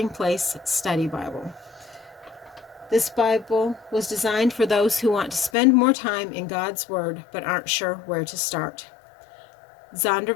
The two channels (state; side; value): drops out; right; at 5.5 s